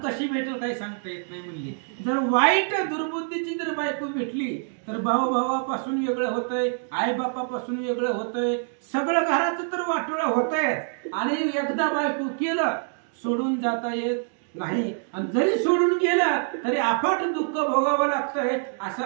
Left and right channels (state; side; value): silent; left; 61 dB below the other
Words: कशी भेटेल काही सांगता येत नाही म्हणली, जर वाईट दुर्बुद्धीची जर बायको भेटली तर भाऊ भावापासून वेगळं होतंय, आई बापापासून वेगळं होतंय, सगळं घराचं तर वाटोळं होतंय. आणि एकदा बायको केलं सोडून जाता येत नाही. आणि जरी सोडून गेलं तरी अफाट दुःख भोगावं लागतंय असं